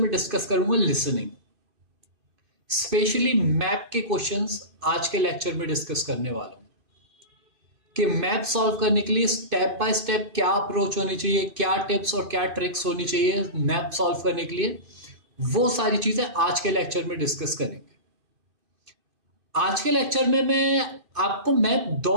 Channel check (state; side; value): late; left; 2.5 ms